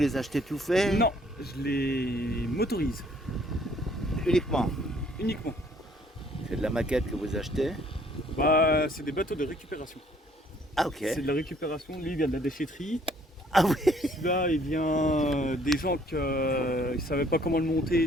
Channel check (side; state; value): both; normal; correlation 0.62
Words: achetez tout faits? Non, je les motorise Uniquement. uniquement. C'est de la maquette que vous achetez? Bah, c'est des bateaux de récupération. Ah ok. C'est de la récupération. Lui, il vient de la déchetterie. Ah oui. Celui-là, il vient des gens qui ne savaient pas comment le